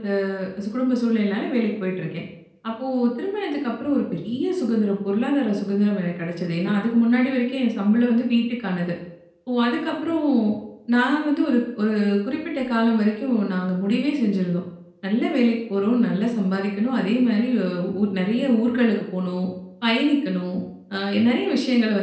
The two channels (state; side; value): identical; both; correlation 1.00